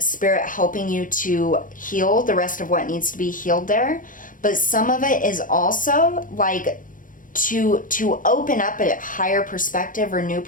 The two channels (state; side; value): late; right; 0.39 ms